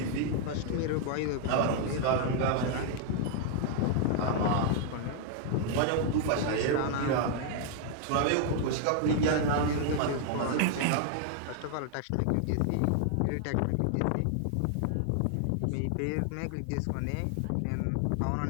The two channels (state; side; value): different; both; correlation 0.00